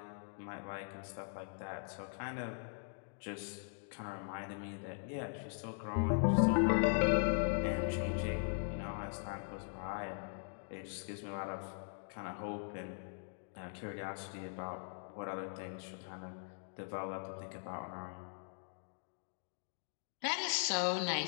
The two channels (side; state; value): right; silent; digital silence